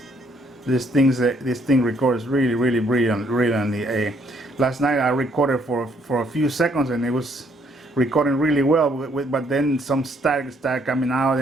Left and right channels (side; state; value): both; normal; correlation 0.68